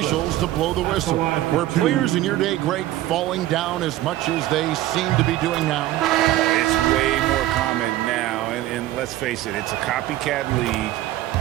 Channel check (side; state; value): left; quieter; 15.0 dB